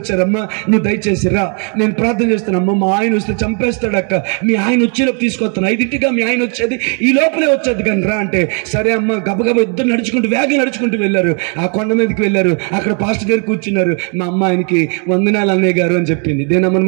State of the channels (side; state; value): left; quieter; 38.9 dB